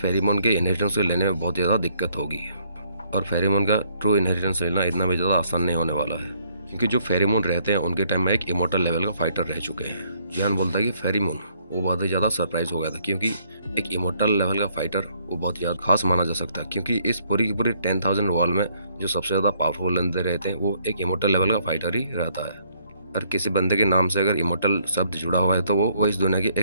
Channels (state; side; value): inverted; both; correlation -0.67